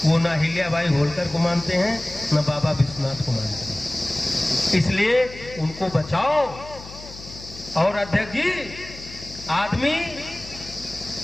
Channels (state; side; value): noise; left; hum, 16 dB below the sound